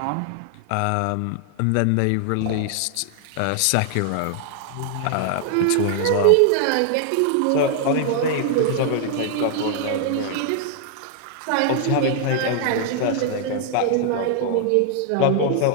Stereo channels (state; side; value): different; both; correlation 0.00